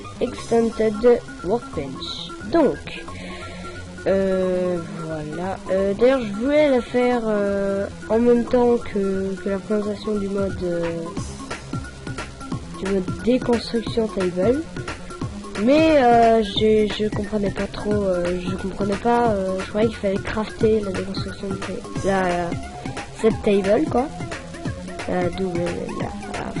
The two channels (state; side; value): identical; both; correlation 1.00